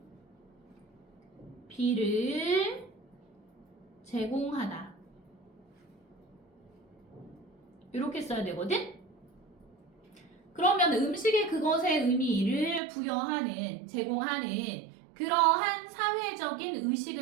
B를 제공하다. 이렇게 써야 되거든? 그러면 음식에 그것의 의미를 부여하는, 제공하는 그러한 사회적인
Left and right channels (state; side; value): drops out; left; at 12.8 s